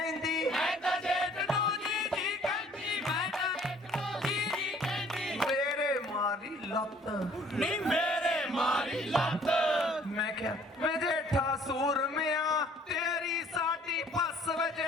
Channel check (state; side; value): normal; both; correlation 0.57